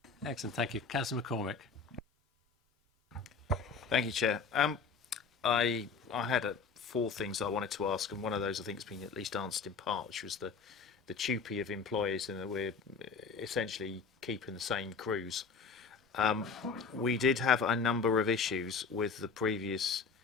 Excellent, thank you. Councillor McCormick. Thank you, Chair. I had 4 things I wanted to ask, and one of those I think has been at least answered in part, which was the TUPE of employees, and that we're essentially keeping the same crews. We did have a number of issues with the previous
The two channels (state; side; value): quieter; right; 5.2 dB